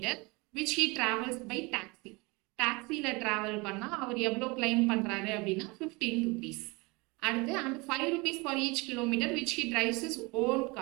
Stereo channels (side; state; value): left; quieter; 25.9 dB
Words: which he travels by taxi. டாக்ஸியில் ட்ராவல் பண்ணால் அவர் எவ்வளோ கிளைம் பண்ணுறாரு அப்படின்னா ₹15. அடுத்து and ₹5 for each kilometre which he drives his own